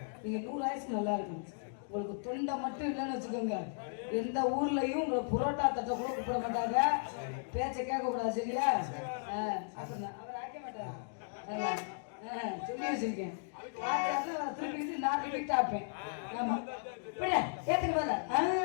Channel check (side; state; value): right; silent; digital silence